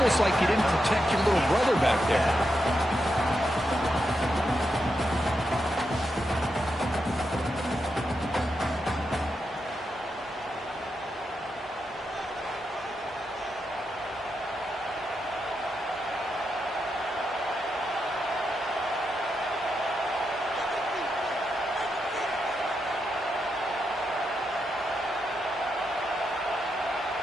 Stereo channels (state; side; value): normal; both; correlation 0.85